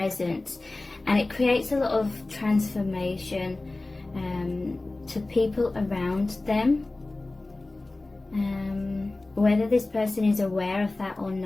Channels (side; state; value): right; quieter; 3.0 dB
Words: and it creates a lot of transformation to people around them. Whether this person is aware of that or